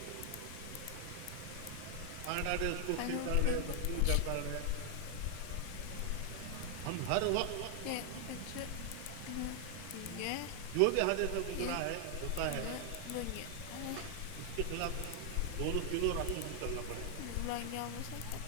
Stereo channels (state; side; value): different; both; correlation 0.00